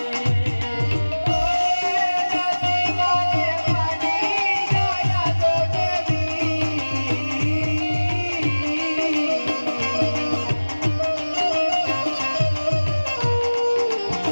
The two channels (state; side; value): inverted; both; correlation -1.00